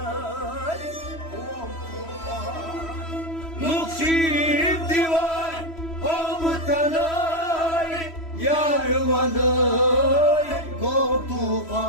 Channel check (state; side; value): late; right; 3.1 ms